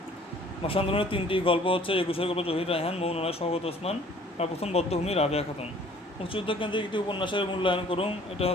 ভাষা আন্দোলনের 3টি গল্প হচ্ছে 21 গল্প জহির রায়হান, মৌনরায় শওকত ওসমান, আর প্রথম বদ্ধভূমি রাবেয়া খাতুন। মুক্তিযুদ্ধ কেন্দ্রিক একটি উপন্যাসের মূল্যায়ন করুন, এটা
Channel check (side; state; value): both; normal; correlation 0.54